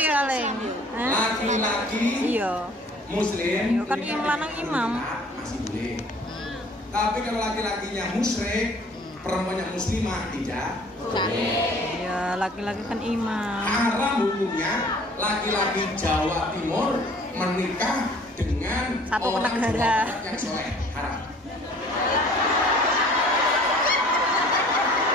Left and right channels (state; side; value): normal; both; correlation 0.52